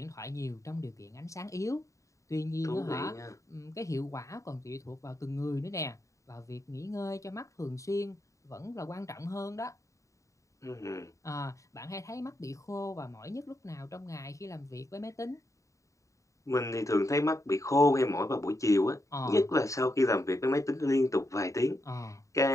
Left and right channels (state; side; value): late; right; 0.15 ms